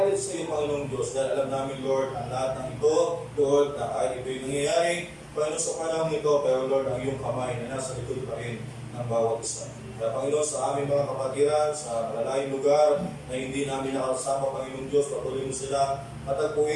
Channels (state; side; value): identical; both; correlation 1.00